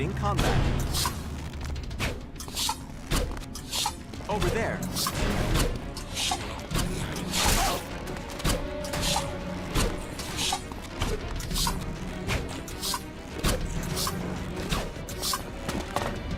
combat. Over there.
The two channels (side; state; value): both; identical; correlation 1.00